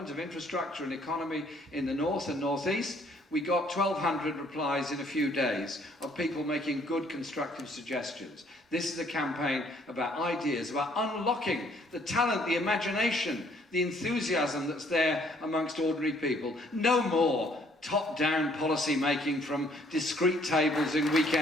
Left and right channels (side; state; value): both; normal; correlation 0.63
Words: of infrastructure and economy in the north and northeast, we got 1,200 replies in a few days of people making good constructive suggestions. This is a campaign about ideas, about unlocking the talent, the imagination, the enthusiasm that's there amongst ordinary people. No more top-down policy making from discreet tables in